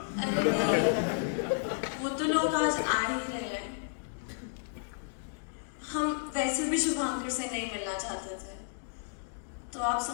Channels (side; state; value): right; silent; digital silence